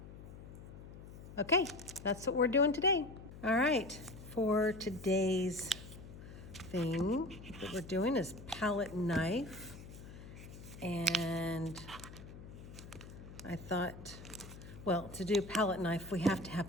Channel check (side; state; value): left; noise; hum, 14 dB below the sound